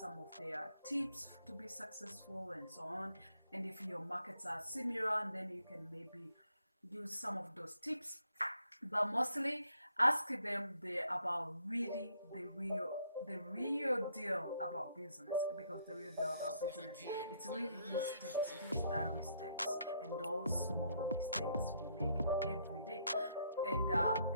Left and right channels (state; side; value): inverted; both; correlation -0.70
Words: of their tips to be successful and so on. And if your markets are similar, then you can maybe use some of those tips. But mostly ask them about really the real deal about business, because the real deal about business, it's really these steps, these diary steps, and those small mistakes we make every day, and